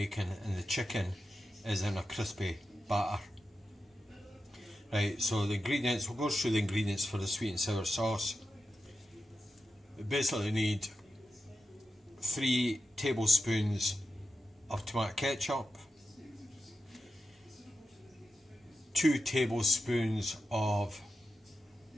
and the chicken is in a crispy batter. Right, so the ingredients, we'll go through the ingredients for the sweet and sour sauce. We basically need 3 tablespoons of tomato ketchup, 2 tablespoons of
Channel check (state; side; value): normal; both; correlation 0.90